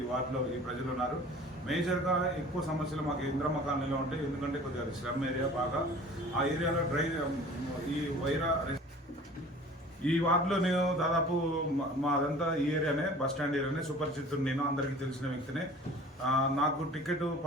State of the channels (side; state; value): both; normal; correlation 0.45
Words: ఈ వార్డులో ఈ ప్రజలు ఉన్నారు. మేజర్గా ఎక్కువ సమస్యలు మాకు ఇంద్రమ్మ కాలనీలో ఉంటాయి. ఎందుకంటే కొద్దిగా స్లమ్ ఏరియా బాగా. ఆ ఏరియాలో ఈ వైరా ఈ వార్డులో నేను దాదాపు మాదంతా ఈ ఏరియానే, బస్ స్టాండ్ ఏరియానే, సుపరిచితుడు నేను, అందరికీ తెలిసిన వ్యక్తినే. నాకు టికెట్